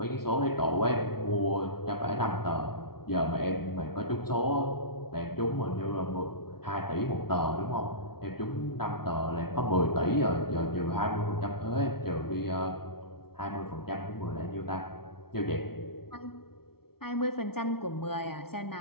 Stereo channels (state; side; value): late; right; 0.94 ms